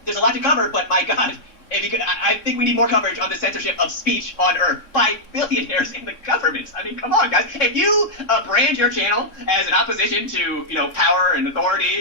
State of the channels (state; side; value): late; right; 3.6 ms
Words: there's a lot to cover, but my God, if you could, I think we need more coverage on the censorship of speech on Earth by billionaires in the governments. I mean, come on, guys. If you brand your channel as an opposition to, you know, power and